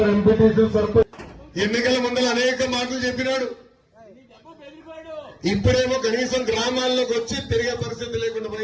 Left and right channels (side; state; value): both; identical; correlation 1.00